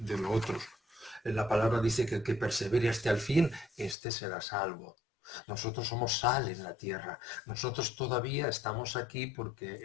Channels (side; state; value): right; drops out; at 4.0 s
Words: otro. La palabra dice que el que persevere hasta el fin, este será salvo. Nosotros somos sal en la tierra. Nosotros todavía estamos aquí porque